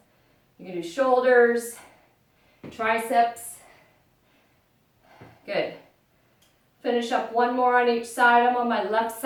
you can do shoulders, triceps. Good. Finish up one more on each side. I'm on my left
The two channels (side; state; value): both; identical; correlation 1.00